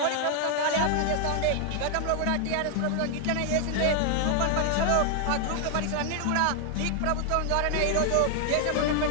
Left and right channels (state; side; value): different; both; correlation 0.00